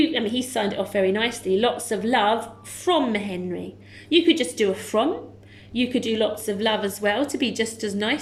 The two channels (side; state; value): both; identical; correlation 1.00